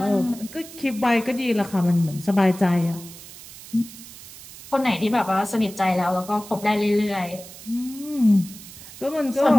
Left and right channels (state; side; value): noise; right; hiss, 16 dB below the sound